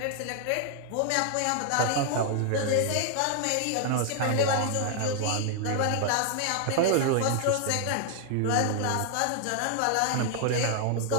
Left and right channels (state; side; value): different; both; correlation 0.00